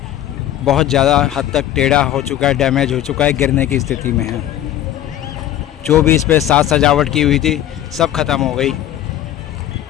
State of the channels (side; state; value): right; quieter; 12.5 dB